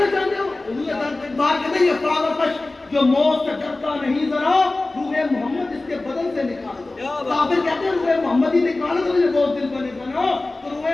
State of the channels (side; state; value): right; quieter; 3.0 dB